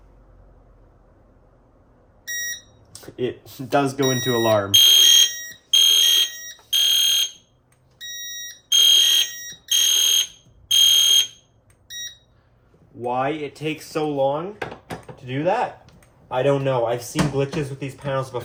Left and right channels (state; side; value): identical; both; correlation 1.00